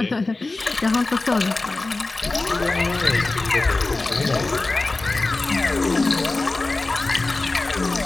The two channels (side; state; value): right; quieter; 3.3 dB